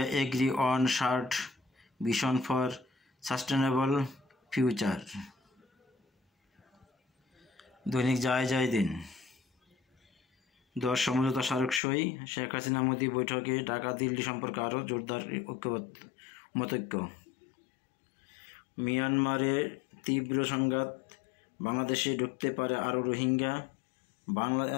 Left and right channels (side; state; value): right; drops out; at 11.8 s